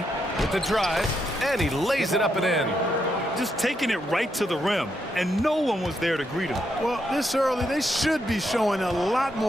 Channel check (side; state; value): both; normal; correlation 0.80